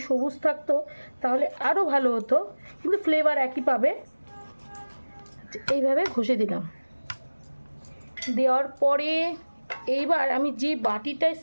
সবুজ থাকতো তাহলে আরও ভালো হতো, কিন্তু ফ্লেভার একই পাবে। এইভাবে ঘষে দিলাম। দেওয়ার পরে এইবার আমি যে বাটিটায়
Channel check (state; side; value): inverted; both; correlation -1.00